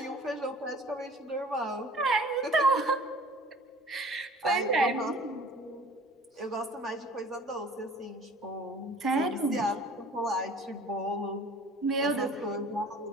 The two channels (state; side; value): normal; both; correlation 0.47